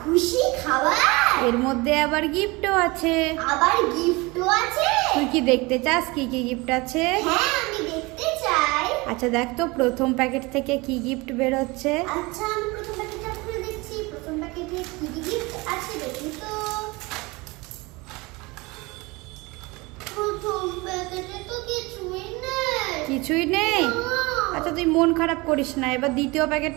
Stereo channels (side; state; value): left; quieter; 24.2 dB